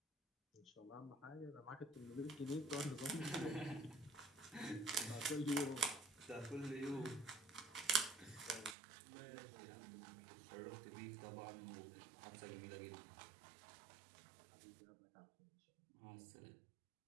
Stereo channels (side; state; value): left; drops out; at 8.8 s